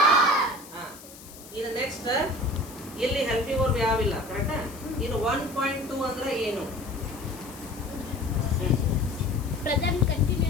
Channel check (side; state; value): left; noise; hiss, 18 dB below the sound